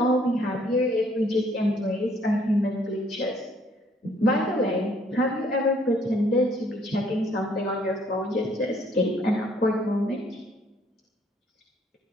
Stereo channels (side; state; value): both; normal; correlation 0.64